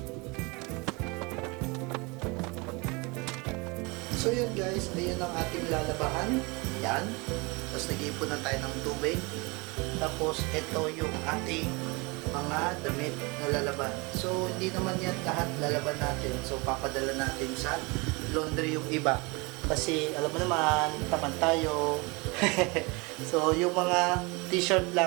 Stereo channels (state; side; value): quieter; left; 27.3 dB